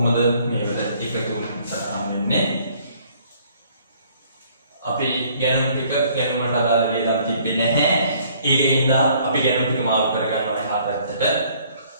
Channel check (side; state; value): both; inverted; correlation -0.60